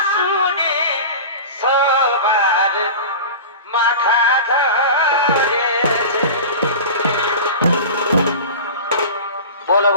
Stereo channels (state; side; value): inverted; both; correlation -0.32